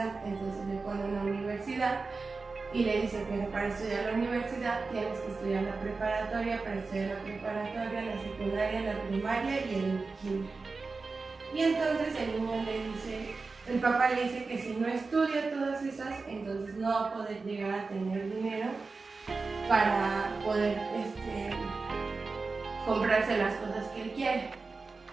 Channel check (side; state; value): left; quieter; 4.1 dB